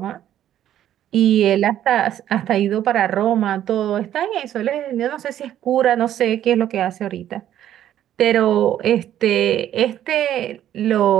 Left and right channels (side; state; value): left; quieter; 11.4 dB